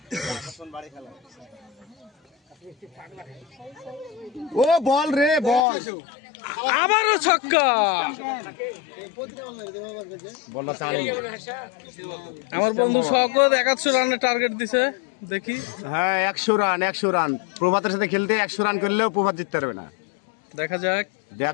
ও বল রে বল, আবারও ছক্কা। আমার বন্ধু শওকত 71 রানের টার্গেট দিছে, দেখি। হ্যাঁ 100 রান প্রভাতের সাথে খেলতে 100 রান করলেও প্রভাত জিততে পারবে না।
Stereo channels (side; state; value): right; drops out; at 5.7 s